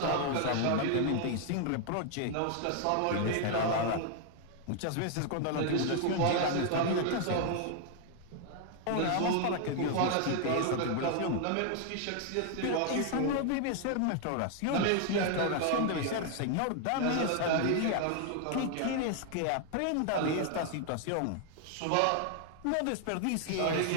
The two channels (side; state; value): both; different; correlation 0.00